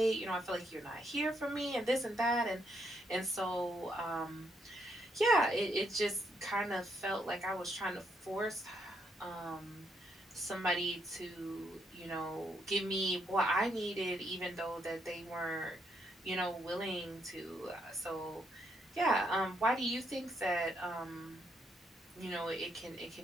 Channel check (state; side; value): normal; both; correlation 0.75